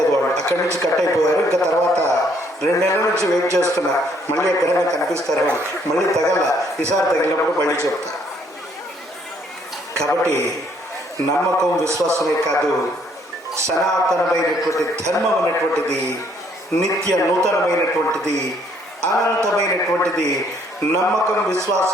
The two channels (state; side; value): normal; both; correlation 0.66